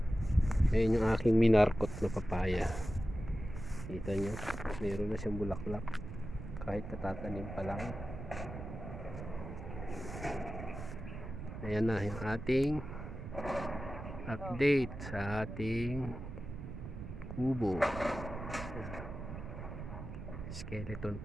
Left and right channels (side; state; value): right; noise; rumble, 9 dB below the sound